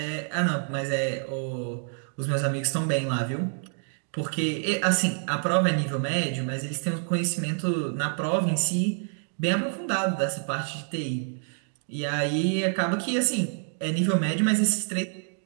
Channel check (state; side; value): silent; left; 60 dB below the other